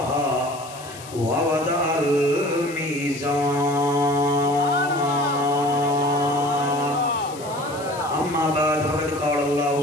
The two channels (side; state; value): left; noise; hiss, 17 dB below the sound